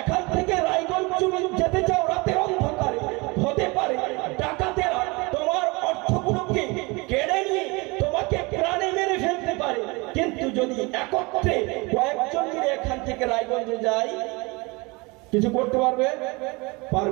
থেকে রায়গঞ্জ তুমি যেতে চাও রাতের অন্ধকারে, হতে পারে ডাকাতেরা তোমার অর্থগুলোকে কেড়ে নিয়ে তোমাকে প্রাণে মেরে ফেলতে পারে, কিন্তু যদি একত্রে কয়েকজন মিলে এখান থেকে রায়গঞ্জে যাই, কিছু করতে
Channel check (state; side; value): quieter; left; 26.2 dB